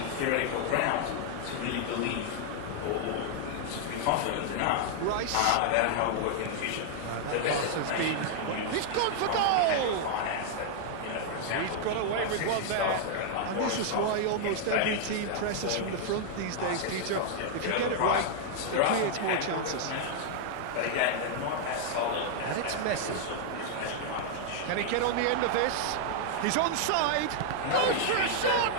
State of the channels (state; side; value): different; both; correlation -0.01